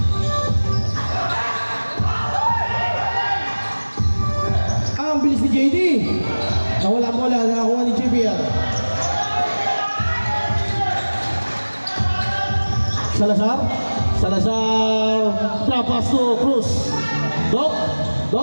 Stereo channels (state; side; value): inverted; both; correlation -1.00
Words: Ang bilis ni JD. Nawala bola, nakakuha ni JBL. Salazar drop pass to Cruz. Doc